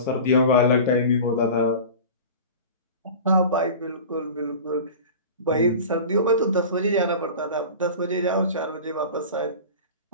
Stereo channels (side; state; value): both; inverted; correlation -0.35